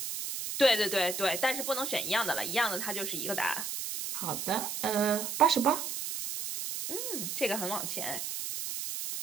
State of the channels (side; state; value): right; noise; hiss, 4 dB below the sound